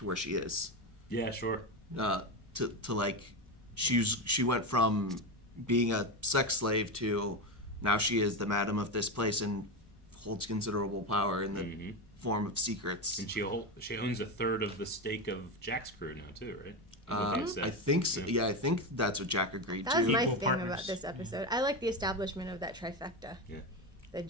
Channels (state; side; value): normal; both; correlation 0.16